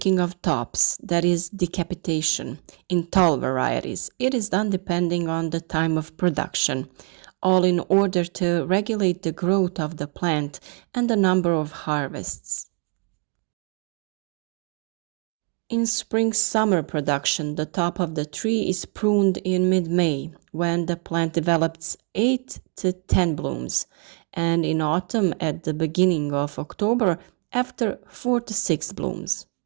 of tops, that is decapitation, in tall varieties. It is done depending on the time of production, all in order to regulate the growth of the plant and the number of harvests. In spring-summer production, the top of the tree is pruned in mid-May, when the plant develops 8 to 10 blooms, and in autumn at the beginning of October after 4 to 6 blooms.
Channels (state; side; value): quieter; left; 37.5 dB